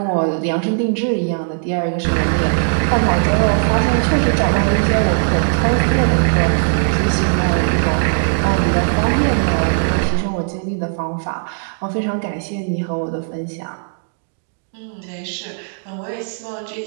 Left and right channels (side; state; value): left; silent; digital silence